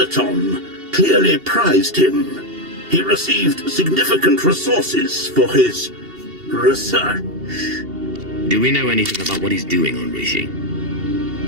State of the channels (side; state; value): left; late; 2.8 ms